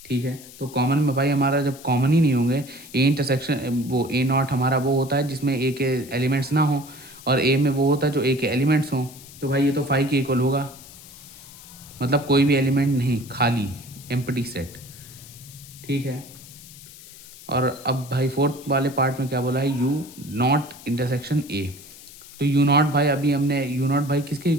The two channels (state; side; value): noise; left; hiss, 18 dB below the sound